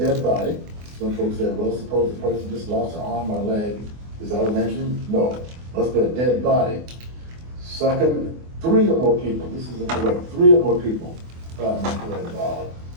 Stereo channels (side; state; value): left; late; 24 ms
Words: body. Some folks said, well, suppose the person just lost an arm or a leg. Is that a lynching? No. Must be a dead body. Second, 3 or more people. This is incorrect. 3 or more people were involved.